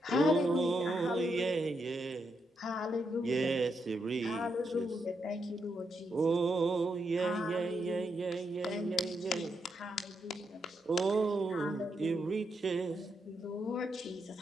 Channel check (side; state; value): both; normal; correlation 0.81